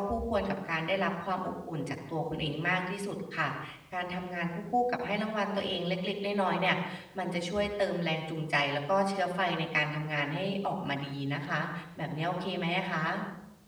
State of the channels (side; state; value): both; identical; correlation 1.00